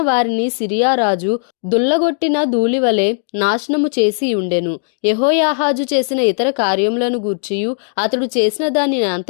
వారిని సిరియా రాజు దుల్లగొట్టిన ధూళివలె నాశనము చేసి ఉండెను. యెహోయాహాజు చేసిన ఇతర కార్యములను గూర్చియు అతడు చేసిన దాని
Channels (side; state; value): right; silent; 67 dB below the other